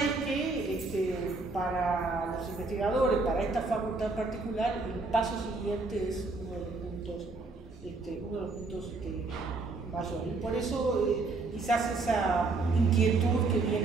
es que para los investigadores, para esta facultad en particular, el paso siguiente es uno de los puntos mayores. Y por eso quizás esa inquietud que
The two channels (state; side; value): quieter; left; 3.6 dB